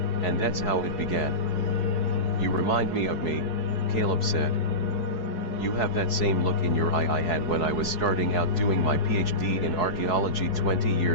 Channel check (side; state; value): right; late; 4.7 ms